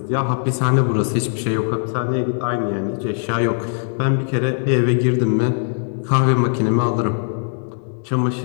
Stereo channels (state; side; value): silent; right; digital silence